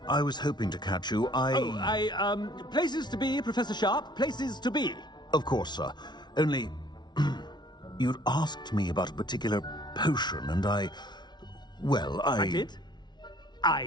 I was hoping to catch you. Places to be, Professor Sharp. Places to be. Of course, sir. Only, you'd asked me about a particular potion, and I did?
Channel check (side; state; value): right; late; 0.20 ms